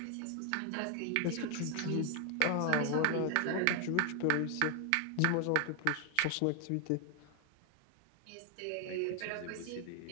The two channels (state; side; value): different; both; correlation 0.00